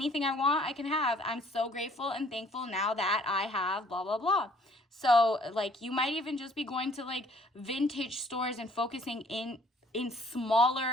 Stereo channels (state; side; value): normal; both; correlation 0.58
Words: I want, I can have. I'm so grateful and thankful now that I have blah, blah, blah. So like you might even just be going to like vintage stores and focusing in